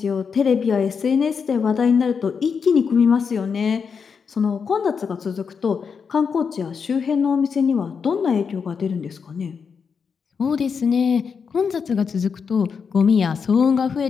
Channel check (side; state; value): right; quieter; 6.0 dB